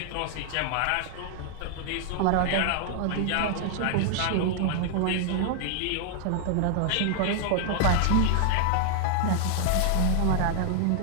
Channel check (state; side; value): different; both; correlation -0.01